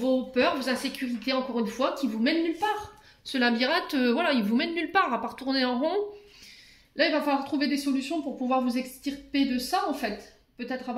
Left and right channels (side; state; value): both; identical; correlation 1.00